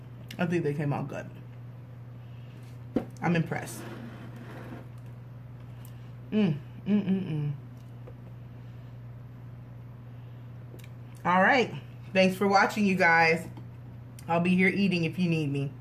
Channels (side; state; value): both; identical; correlation 1.00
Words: I think they came out good. I'm impressed. All right. Thanks for watching, you guys. I'll be here eating if you need me.